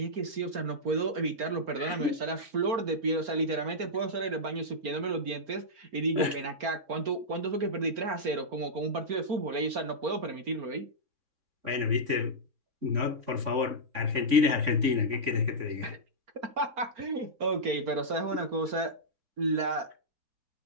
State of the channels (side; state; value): left; late; 4.4 ms